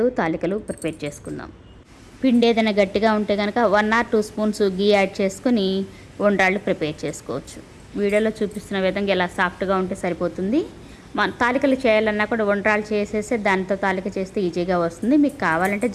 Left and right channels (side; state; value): both; identical; correlation 1.00